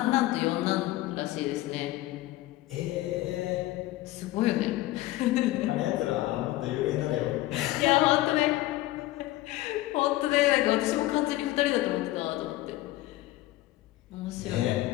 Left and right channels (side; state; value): right; quieter; 16.9 dB